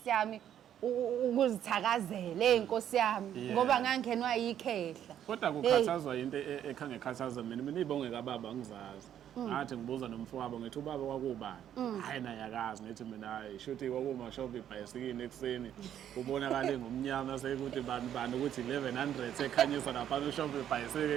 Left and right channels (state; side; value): quieter; left; 10.2 dB